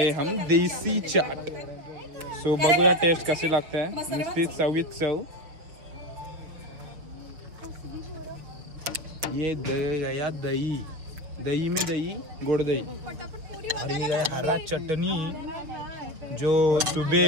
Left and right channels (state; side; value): late; left; 6.5 ms